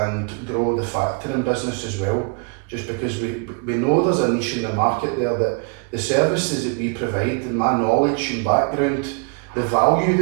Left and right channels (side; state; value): left; quieter; 35.5 dB